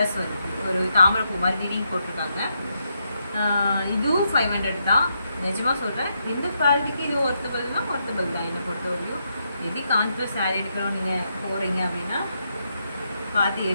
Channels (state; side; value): inverted; both; correlation -0.80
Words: வருது, ஒரு தாமரை பூ மாதிரி டிடிங் போட்டிருக்காங்க. இதுவும் 500 தான். நிஜமாக சொல்கிறேன், இந்த குவாலிட்டிக்கு இது ஒர்த்தபிள் தான் என்னை பொறுத்தவரையும். எது கான்ட்ராஸ்ட் சாரீ எடுக்கிறோம் நீங்கள் போகிறீங்க அப்படின்னா பார்த்து